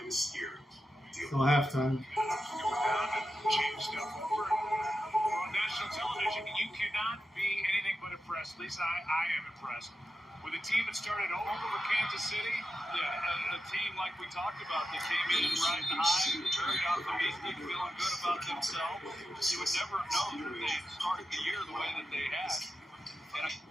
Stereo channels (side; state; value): both; normal; correlation 0.90